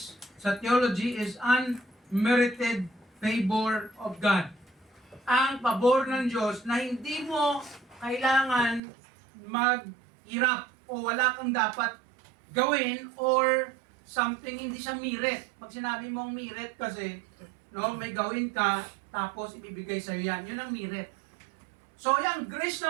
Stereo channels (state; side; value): drops out; left; at 8.8 s